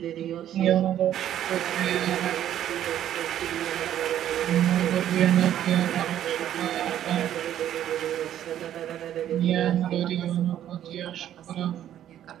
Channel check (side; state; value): left; quieter; 11.2 dB